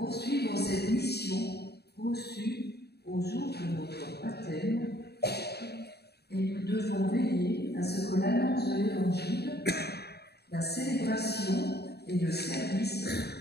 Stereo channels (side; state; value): right; late; 0.47 ms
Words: cette mission reçue au jour de notre baptême, et nous devons veiller à ce que l'annonce de l'Évangile, la célébration et le service